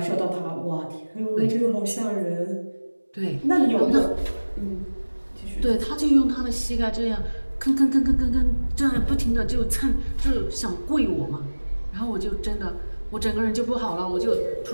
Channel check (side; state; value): both; inverted; correlation -1.00